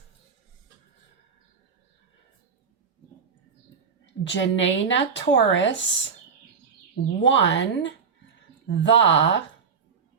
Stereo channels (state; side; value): quieter; left; 6.0 dB